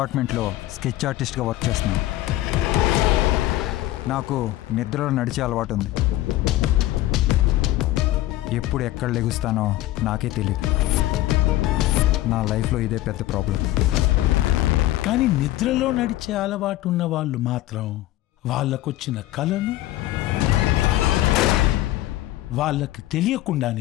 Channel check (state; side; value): quieter; right; 15.7 dB